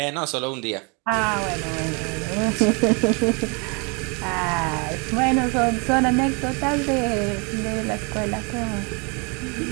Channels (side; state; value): left; quieter; 31.7 dB